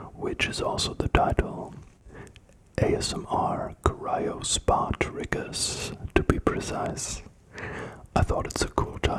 which is also the title. ASMR Cryo Spa Triggers, to be precise. I thought it's a cool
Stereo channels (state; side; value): identical; both; correlation 1.00